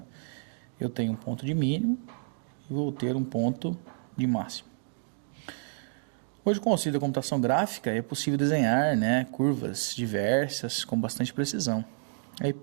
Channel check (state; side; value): silent; left; digital silence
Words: eu tenho um ponto de mínimo e vou ter um ponto de máximo. Hoje, com o auxílio da computação gráfica, é possível desenhar, né, curvas diversas com bastante precisão. A